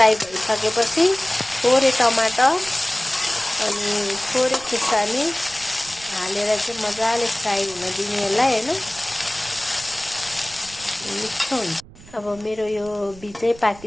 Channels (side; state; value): right; noise; rumble, 21 dB below the sound